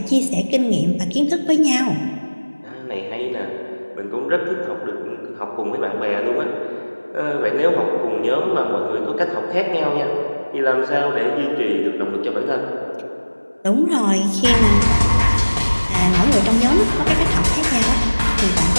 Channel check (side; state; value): both; inverted; correlation -1.00